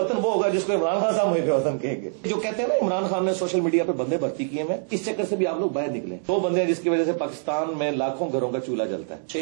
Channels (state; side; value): silent; left; 62 dB below the other